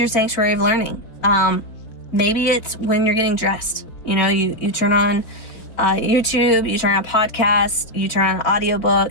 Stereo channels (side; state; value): right; late; 4.6 ms